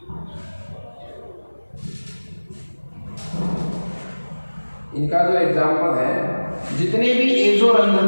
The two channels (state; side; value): inverted; both; correlation -1.00